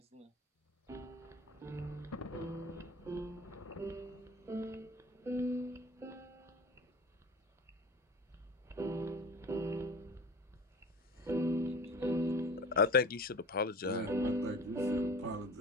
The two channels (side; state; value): both; normal; correlation 0.37